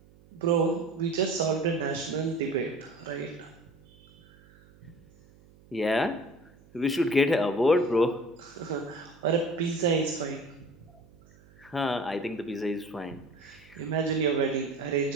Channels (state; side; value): noise; right; hum, 26 dB below the sound